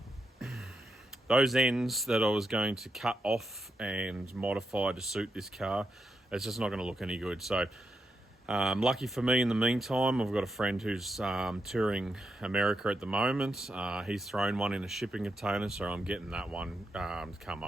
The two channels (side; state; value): both; normal; correlation 0.84